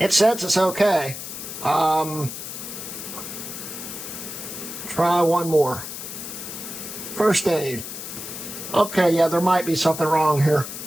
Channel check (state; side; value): noise; left; hiss, 9 dB below the sound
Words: says it's okay. Try one more. First aid. Okay, yeah, there might be something wrong here.